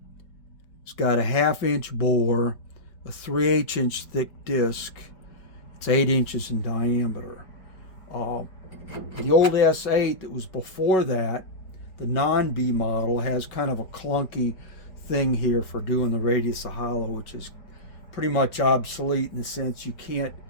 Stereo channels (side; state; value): right; late; 5.3 ms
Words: it's got a 1/2-inch bore, a 3/8 inch thick disc. It's 8 inches in diameter. The old S8 that was before that, the non-B model, has kind of a clunky thing here for doing the radius of hollow, which is pretty much obsolete in the sense you can't